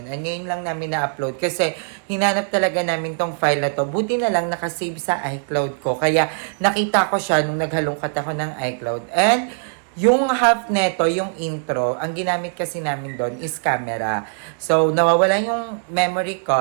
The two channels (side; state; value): left; silent; digital silence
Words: And ngayon lang namin na-upload kasi hinanap talaga namin tong file na to. Buti na lang nakasave sa iCloud ko. Kaya nakita ko siya nung naghalongkat ako ng iCloud. And yung half neto, yung intro, ang ginamit kasi namin doon is camera. So nawawala yung memory